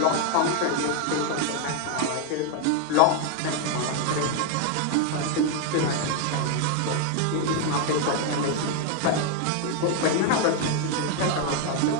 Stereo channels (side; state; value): both; different; correlation 0.01